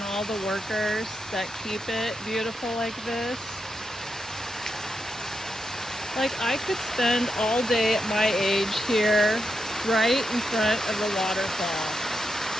all the workers that keep it beautiful like this. Like, I could spend all day at my age here, right in front of the waterfall.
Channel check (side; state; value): both; normal; correlation 0.84